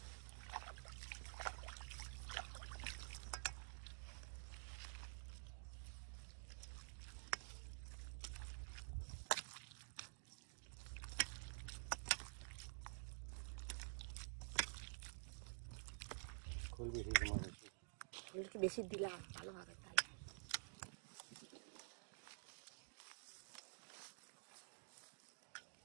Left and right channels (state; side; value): silent; left; digital silence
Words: খোল বেশি তোমার খোল একটু বেশি দিলাম ভালো হবে তাহলে।